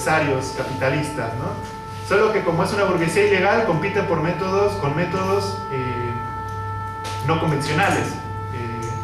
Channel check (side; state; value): both; identical; correlation 1.00